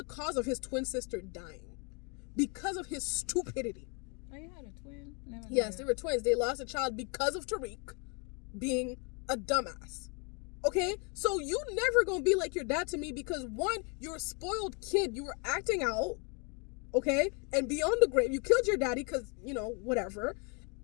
cause of his twin sister dying because of his stupidity. Oh, you had a twin? Yes, they were twins. They lost a child because of Tariq being a dumbass. Okay? So you never gonna be like your dad to me because, one, you're a spoiled kid. You were acting out. Okay? And beyond the grave, you killed your daddy because, whatever.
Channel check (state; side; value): quieter; right; 34.3 dB